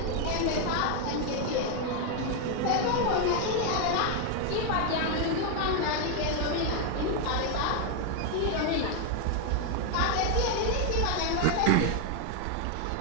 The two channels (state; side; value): different; both; correlation 0.01